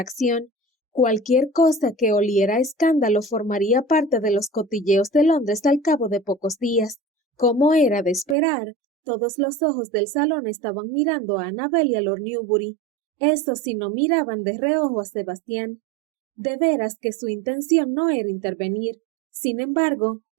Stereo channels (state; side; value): drops out; left; at 8.3 s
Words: Cualquier cosa que oliera a escándalo formaría parte de los cotilleos de Londres al cabo de pocos días. Como era de esperar, todos los ojos del salón estaban mirando a Annabel y a Lord Newbury. Estos sí no miraban de reojo a Sebastián. De veras que su intención no era intervenir. Sin embargo,